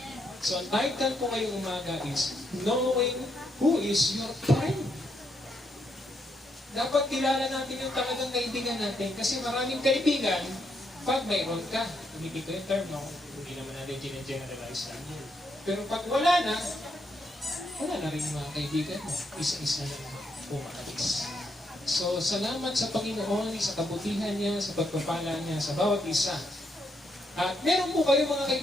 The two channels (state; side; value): normal; both; correlation 0.77